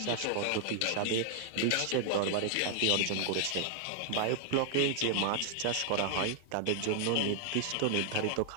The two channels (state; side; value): different; both; correlation 0.00